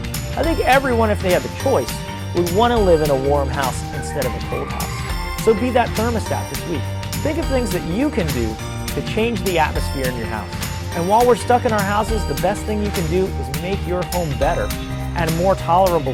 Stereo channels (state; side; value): identical; both; correlation 1.00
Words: I think everyone, if they had the choice, would want to live in a warm house instead of a cold house. So be that thermostat this week. Think of things that you can do to change the atmosphere in your house. And while we're stuck in our houses, the best thing you can do is make your home better and a more tolerable